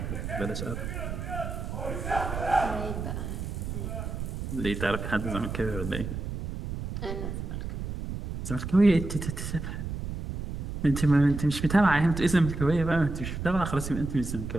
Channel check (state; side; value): noise; right; rumble, 5 dB below the sound